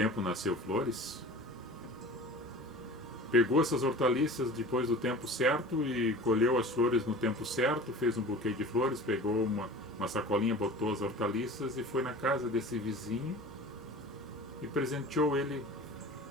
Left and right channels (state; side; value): normal; both; correlation 0.39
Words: nasceu flores. Pegou essas hortaliças depois do tempo certo e colheu as flores no tempo certo, fez um buquê de flores, pegou uma sacolinha, botou as hortaliças e foi na casa desse vizinho e presenteou ele.